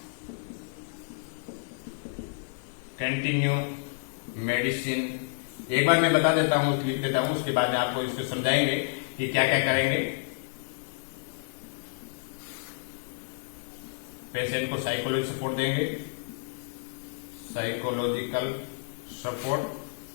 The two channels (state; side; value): silent; right; 58 dB below the other